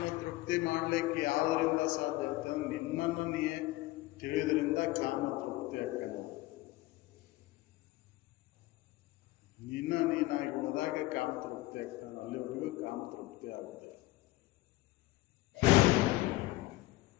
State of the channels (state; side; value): quieter; right; 18.8 dB